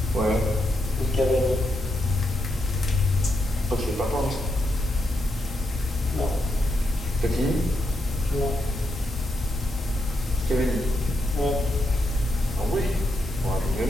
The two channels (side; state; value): both; normal; correlation 0.82